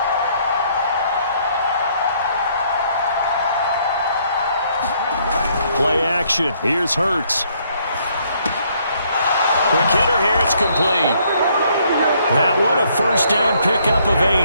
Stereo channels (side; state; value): both; inverted; correlation -0.68